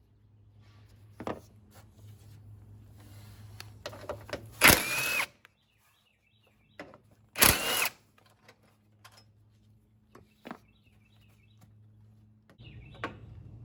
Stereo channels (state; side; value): identical; both; correlation 1.00